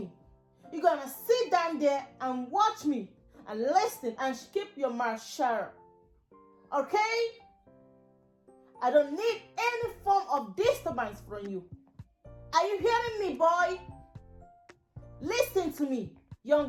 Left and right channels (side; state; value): both; identical; correlation 1.00